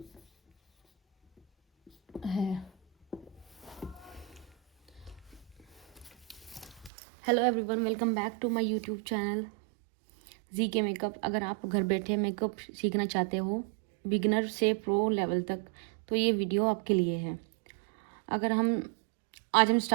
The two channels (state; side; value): drops out; left; at 6.9 s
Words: है। Hello everyone, welcome back to my YouTube channel G K makeup. अगर आप घर बैठे मेकअप सीखना चाहते हो बिगिनर से प्रो लेवल तक, तो ये वीडियो आपके लिए है। आज हम